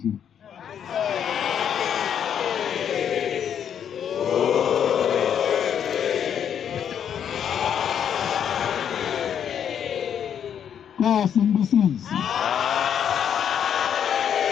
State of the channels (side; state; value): right; quieter; 8.6 dB